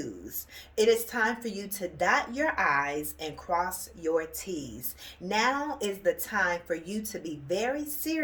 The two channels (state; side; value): identical; both; correlation 1.00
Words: It is time for you to dot your I's and cross your T's. Now is the time for you to be very